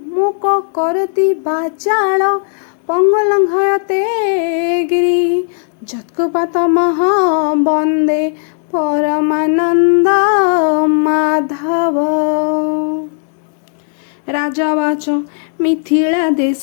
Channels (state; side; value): silent; right; digital silence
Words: मूक करोति वाचाल पंगुलंघयते गिरि जत्कृपातमः वन्दे परमानंद माधव। राजवाच मिथिला देश